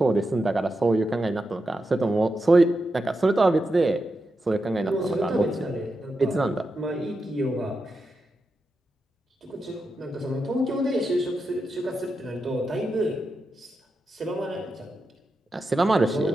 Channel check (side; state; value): both; normal; correlation 0.88